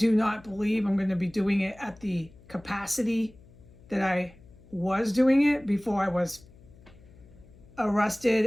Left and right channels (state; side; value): noise; left; hum, 24 dB below the sound